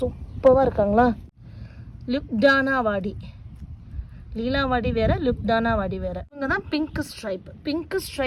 இருக்காங்களா. லுக்டானா வாடி, லீலாவாடி வேறு, லுக்டானா வாடி வேறு. இவங்க தான் பிங்க் ஸ்ட்ரைப். பிங்க்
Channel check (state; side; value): identical; both; correlation 1.00